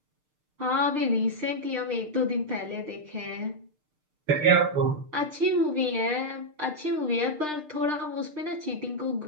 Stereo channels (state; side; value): late; left; 6.6 ms